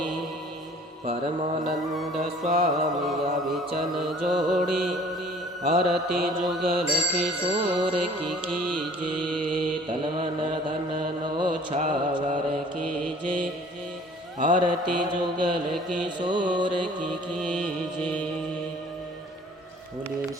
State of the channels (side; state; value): both; normal; correlation 0.51